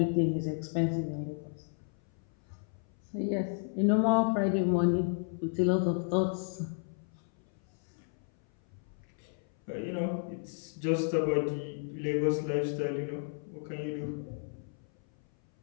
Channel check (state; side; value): silent; right; 56 dB below the other